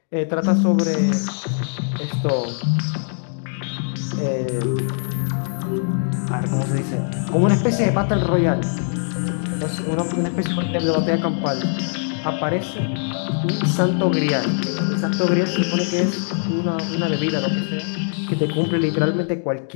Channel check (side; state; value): right; silent; digital silence